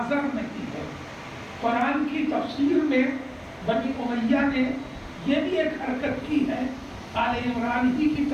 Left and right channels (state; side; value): identical; both; correlation 1.00